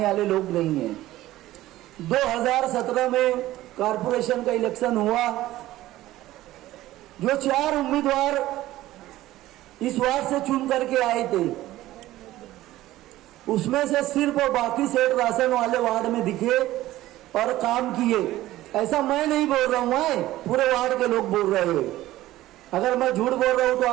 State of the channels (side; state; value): left; quieter; 15.7 dB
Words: वाले लोग नहीं हैं। 2017 में कारपोरेशन का इलेक्शन हुआ, जो 4 उम्मीदवार इस वार्ड से चुन करके आए थे, उसमें से सिर्फ और बाकी सेठ राशन वाले वार्ड में दिखे और काम किए। ऐसा मैं नहीं बोल रहा हूं, पूरे वार्ड के लोग बोल रहे हैं। अगर मैं झूठ बोल रहा हूं तो